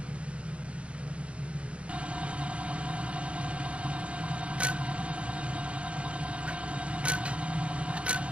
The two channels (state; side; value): late; left; 0.061 ms